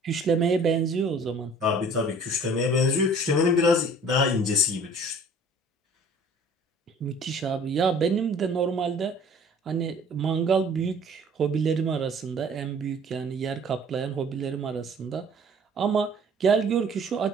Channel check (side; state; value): both; normal; correlation 0.51